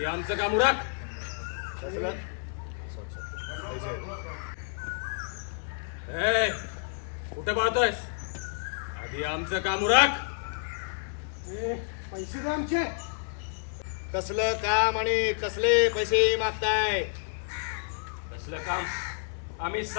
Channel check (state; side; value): silent; right; 58 dB below the other